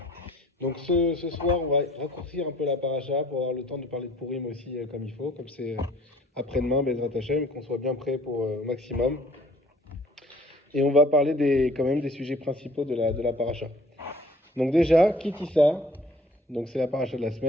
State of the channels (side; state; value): both; normal; correlation 0.54